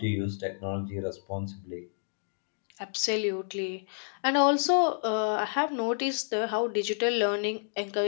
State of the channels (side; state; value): right; silent; digital silence